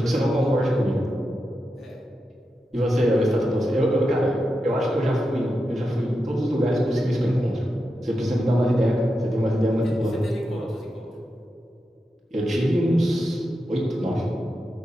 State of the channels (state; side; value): normal; both; correlation 0.88